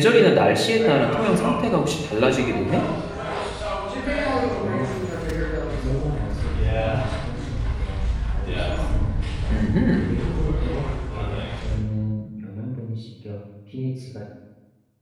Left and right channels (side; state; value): both; identical; correlation 1.00